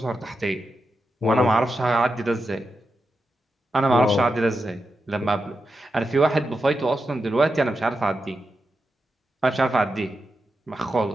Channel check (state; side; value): normal; both; correlation 0.88